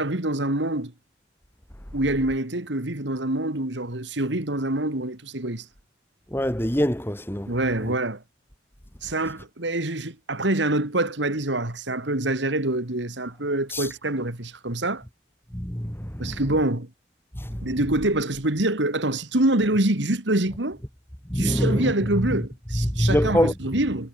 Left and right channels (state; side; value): normal; both; correlation 0.44